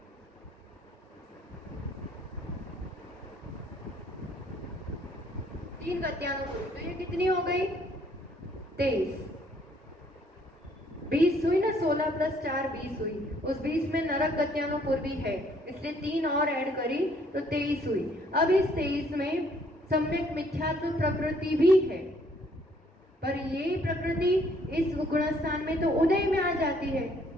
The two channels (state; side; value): normal; both; correlation 0.64